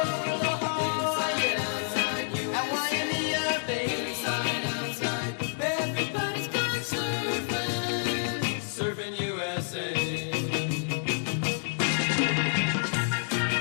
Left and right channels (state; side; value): silent; right; digital silence